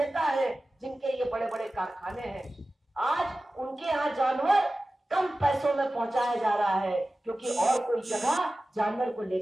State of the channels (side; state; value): both; normal; correlation 0.96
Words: हैं, जिनके ये बड़े बड़े कारखाने हैं। आज उनके यहाँ जानवर कम पैसों में पहुंचाया जा रहा है, क्योंकि और कोई जगह जानवर को ले